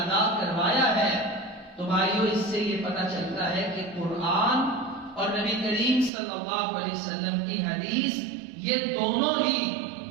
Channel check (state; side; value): drops out; left; at 6.1 s